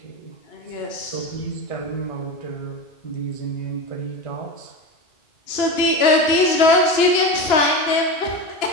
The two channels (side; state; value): right; late; 2.9 ms